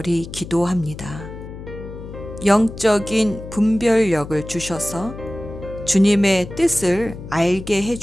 기도합니다. 영적인 분별력을 주셔서 주님의 뜻을 알게 해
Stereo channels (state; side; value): noise; left; hum, 12 dB below the sound